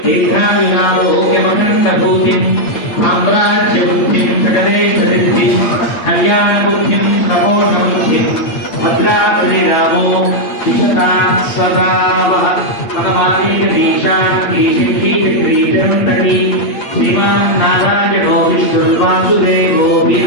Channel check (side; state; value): right; late; 8.7 ms